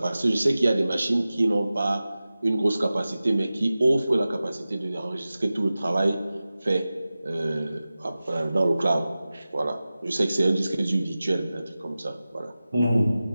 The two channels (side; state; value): both; inverted; correlation -0.96